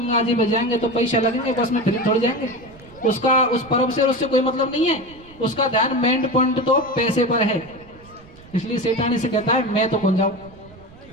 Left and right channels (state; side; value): noise; right; rumble, 22 dB below the sound